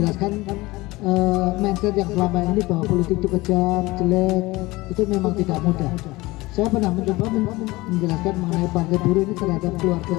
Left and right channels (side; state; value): right; quieter; 20.9 dB